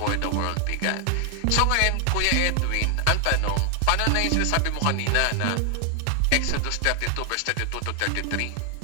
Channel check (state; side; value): different; both; correlation 0.00